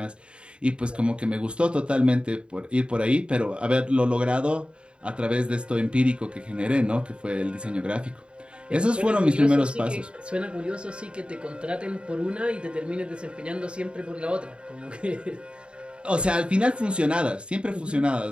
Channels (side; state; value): left; late; 0.055 ms